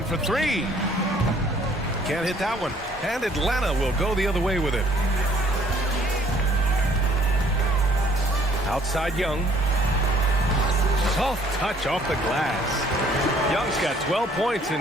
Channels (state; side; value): normal; both; correlation 0.60